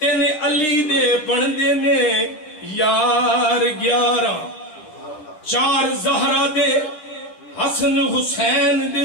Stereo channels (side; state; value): right; late; 9.8 ms